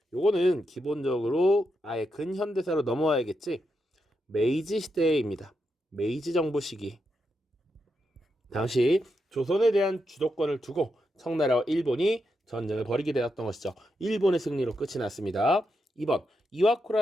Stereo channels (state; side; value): normal; both; correlation 0.84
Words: 요거는 기본적으로 아예 근현대사로 넘어와야겠지. 메이지 시대입니다. 메이지 정부 시기. 당시 조선에 대한 주도권을 두고 청나라와 일본이 전쟁을 벌이게 되었던 것이죠. 일본의 승리로 끝이 났습니다. 2번